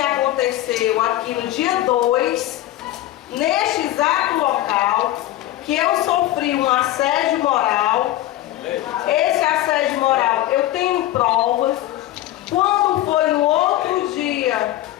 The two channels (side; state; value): right; quieter; 14.6 dB